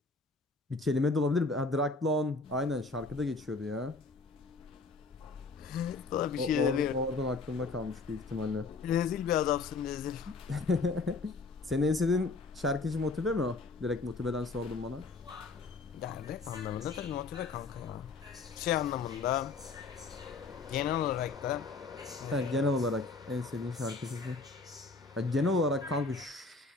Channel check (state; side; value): quieter; right; 3.9 dB